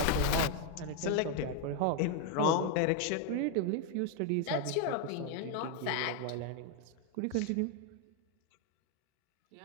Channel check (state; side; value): different; both; correlation 0.01